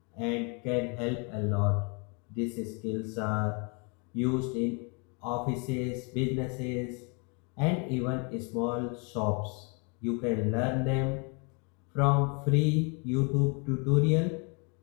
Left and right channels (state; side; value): quieter; right; 34.4 dB